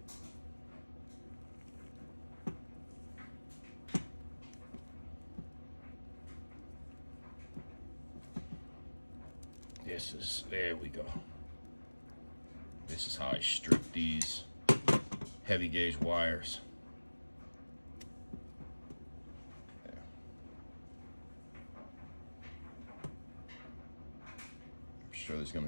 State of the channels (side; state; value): both; inverted; correlation -1.00